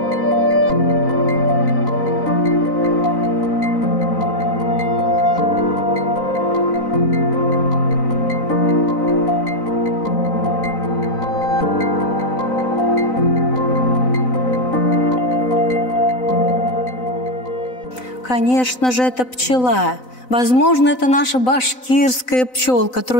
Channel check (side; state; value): right; late; 4.0 ms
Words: Конечно же, это пчела. Возможно, это наша башкирская